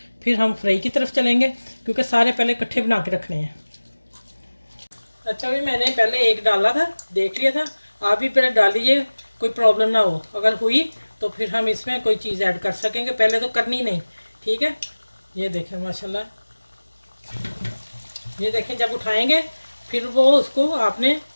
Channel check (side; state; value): both; inverted; correlation -1.00